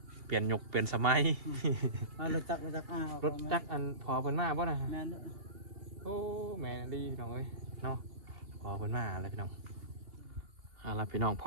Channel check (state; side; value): late; left; 2.7 ms